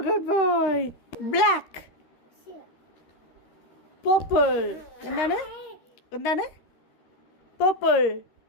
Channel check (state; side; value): late; right; 13 ms